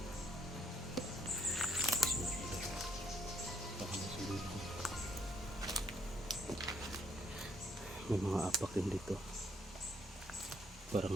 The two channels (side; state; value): both; normal; correlation 0.70